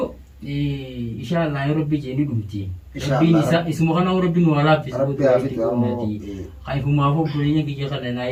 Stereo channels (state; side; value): identical; both; correlation 1.00